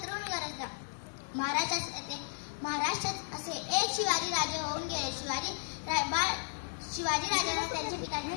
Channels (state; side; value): silent; right; digital silence